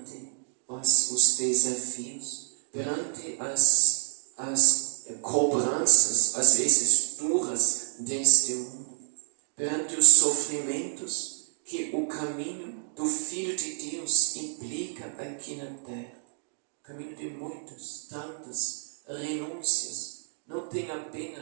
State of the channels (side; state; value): left; silent; digital silence